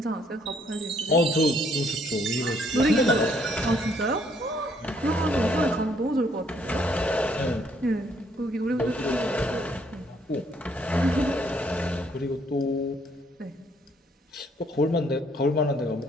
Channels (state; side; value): normal; both; correlation 0.67